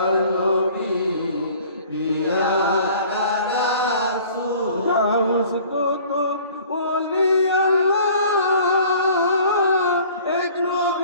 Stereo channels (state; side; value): inverted; both; correlation -0.50